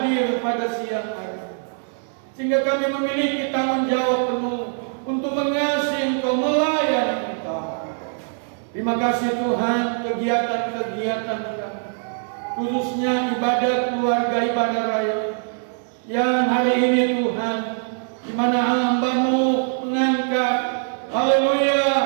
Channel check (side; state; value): left; silent; 64 dB below the other